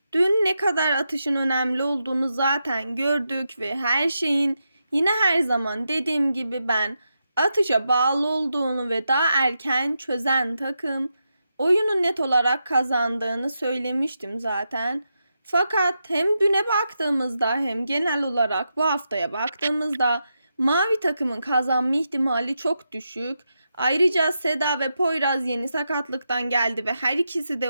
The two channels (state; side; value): inverted; both; correlation -0.86